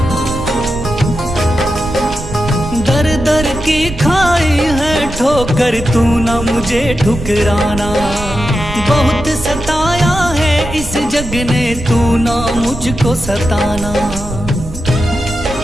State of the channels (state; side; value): noise; right; rumble, 10 dB below the sound